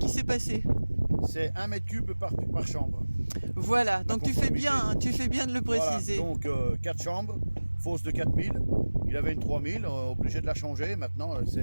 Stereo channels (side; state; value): both; inverted; correlation -1.00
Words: s'est passé? C'est 1 mètre cube par chambre. Voilà, donc tu fais bien de le préciser. Voilà, donc 4 chambres, fosse de 4000. Il avait une 3000, obligé de la changer. Maintenant,